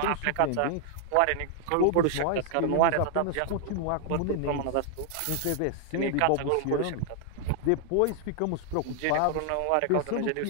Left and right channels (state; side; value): different; both; correlation 0.00